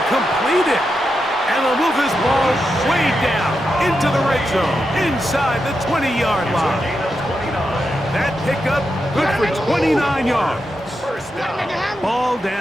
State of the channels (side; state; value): both; normal; correlation 0.86